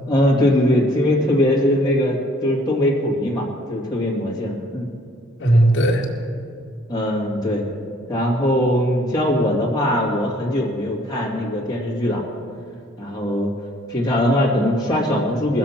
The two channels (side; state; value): both; normal; correlation 0.60